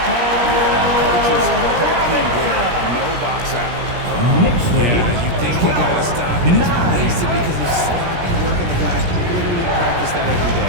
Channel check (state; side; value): late; left; 17 ms